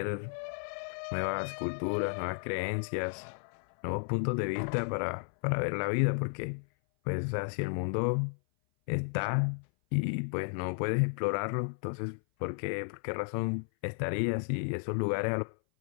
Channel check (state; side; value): silent; right; 56 dB below the other